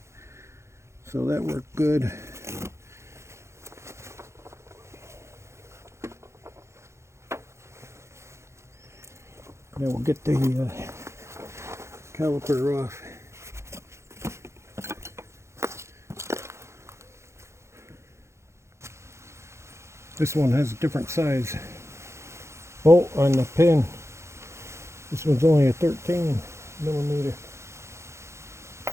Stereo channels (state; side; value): late; left; 0.13 ms